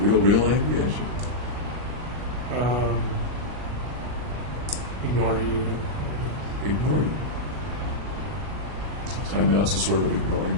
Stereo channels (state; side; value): late; left; 40 ms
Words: angry at you? Ignore you. Ignore you. Timeouts is sort of